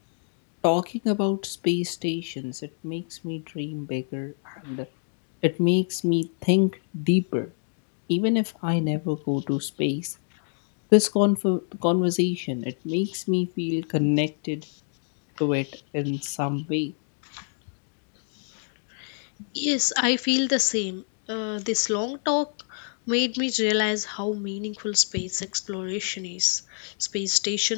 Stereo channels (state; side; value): silent; right; 55 dB below the other